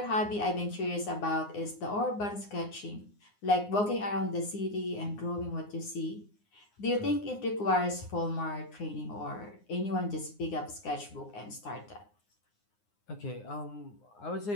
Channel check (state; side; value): late; right; 9.7 ms